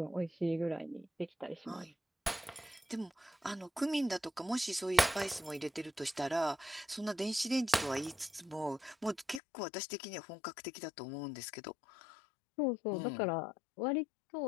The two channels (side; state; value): right; drops out; at 9.4 s